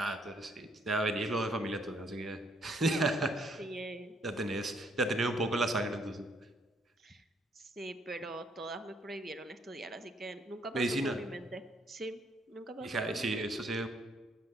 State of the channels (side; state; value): both; normal; correlation 0.68